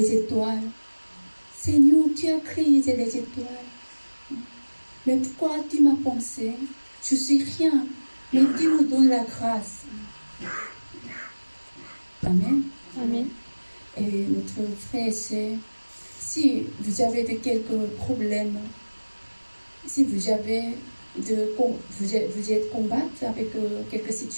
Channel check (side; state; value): both; inverted; correlation -1.00